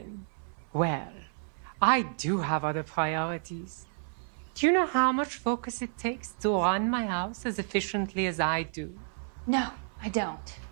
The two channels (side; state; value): left; silent; 55 dB below the other